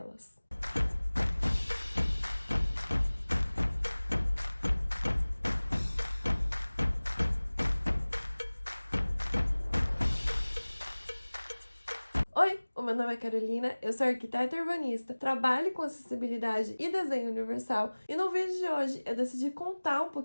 Oi, o meu nome é Carolina, eu sou arquiteta urbanista, trabalho com acessibilidade e desenho universal e no vídeo de hoje eu decidi contar um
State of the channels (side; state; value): both; inverted; correlation -1.00